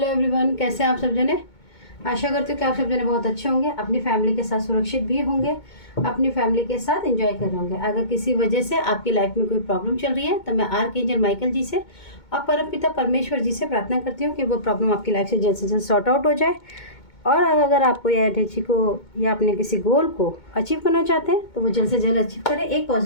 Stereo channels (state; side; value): late; right; 2.2 ms